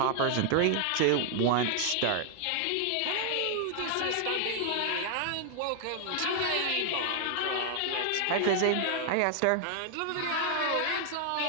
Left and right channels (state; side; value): different; both; correlation 0.00